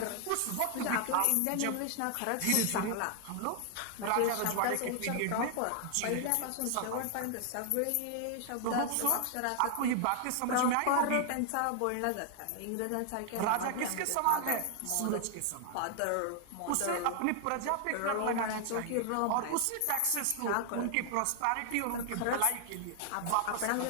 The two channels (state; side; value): different; both; correlation 0.00